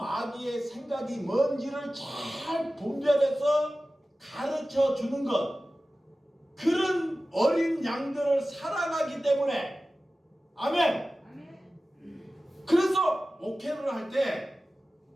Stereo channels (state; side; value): normal; both; correlation 0.96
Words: 생각이 뭔지를 잘 분별해서 가르쳐 주는 것. 그런 어린 양들을 사랑하기 때문에. 아멘. 그래서 목회를 할 때